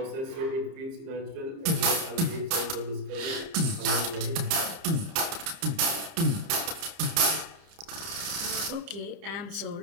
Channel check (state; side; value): late; left; 30 ms